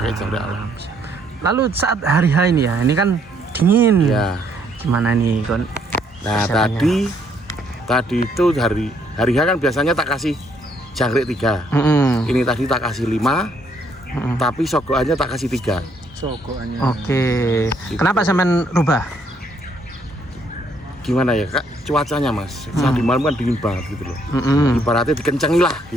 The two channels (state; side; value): normal; both; correlation 0.69